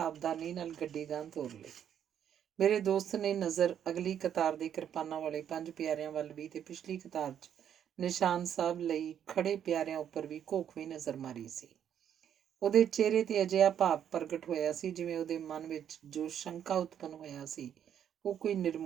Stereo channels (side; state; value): left; quieter; 9.3 dB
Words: ਨਾਲ ਗੱਡੀ ਗਾਂਹ ਤੋਰ ਲਈ। ਮੇਰੇ ਦੋਸਤ ਨੇ ਨਜ਼ਰ ਅਗਲੀ ਕਤਾਰ ਦੇ ਕਿਰਪਾਨਾਂ ਵਾਲੇ 5 ਪਿਆਰਿਆਂ ਵੱਲ ਵੀ ਤੇ ਪਿਛਲੀ ਕਤਾਰ 'ਚ ਨਿਸ਼ਾਨ ਸਾਹਿਬ ਲਈ ਖੜੇ ਪਿਆਰਿਆਂ ਉੱਪਰ ਵੀ ਘੋਖਵੀਂ ਨਜ਼ਰ ਮਾਰੀ ਸੀ। ਉਹਦੇ ਚਿਹਰੇ ਤੇ ਅਜਿਹਾ ਭਾਵ ਪ੍ਰਗਟ ਹੋਇਆ ਸੀ ਜਿਵੇਂ ਉਹਦੇ ਮਨ ਵਿੱਚ ਜੋ ਸ਼ੰਕਾ ਉਤਪੰਨ ਹੋਇਆ ਸੀ ਉਹ ਕੋਈ